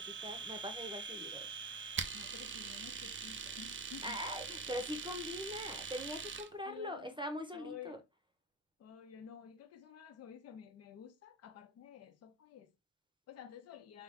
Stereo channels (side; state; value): both; normal; correlation 0.22